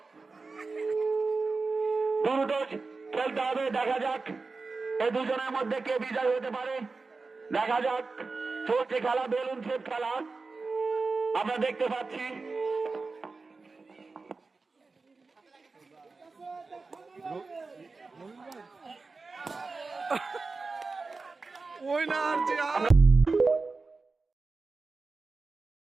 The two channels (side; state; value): left; quieter; 4.0 dB